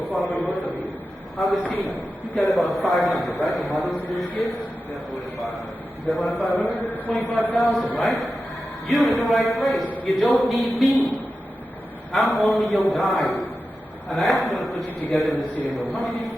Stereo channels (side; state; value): both; normal; correlation 0.92